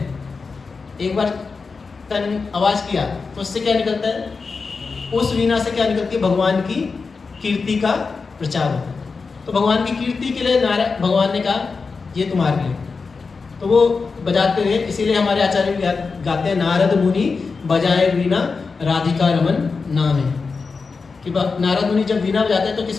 एक बार तन आवाज किया तो उससे क्या निकलता है? उस वीणा से क्या निकलती है? भगवान की कीर्ति का प्रचार होता है। तो भगवान की कीर्ति के लिए भगवान ने कहा ये तुम्हारे लिए, तो वो बजाते हुए, इसीलिए हमारे आचार्य गाते हैं नारद मुनि बजाए वीणा राधिका रमन नाम है। कि नारद मुनि जब वीणा बजाते हैं तो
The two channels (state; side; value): quieter; right; 4.6 dB